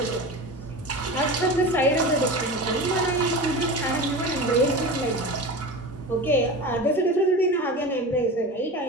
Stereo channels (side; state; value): both; normal; correlation 0.29